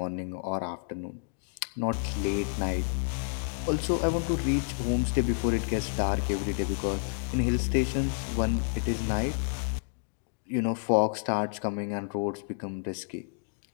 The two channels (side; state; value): right; silent; digital silence